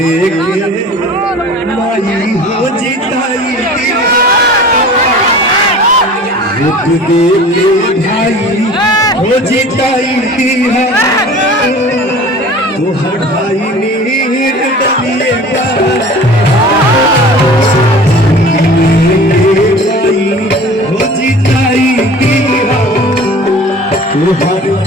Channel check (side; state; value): both; normal; correlation 0.42